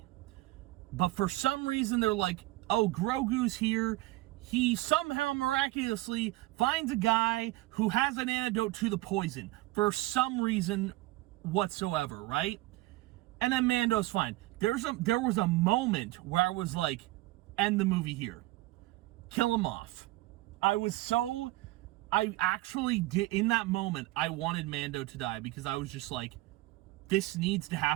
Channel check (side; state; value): left; quieter; 19.2 dB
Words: But for some reason they're like, "Oh, Grogu's here." He somehow miraculously finds a guy who has an antidote to the poison for some reason whatsoever, right? And then Mando's fine. There was a moment where I was like, end the movie here. Kill him off. I actually did, in that moment, I wanted Mando to die because I was just like, this needs to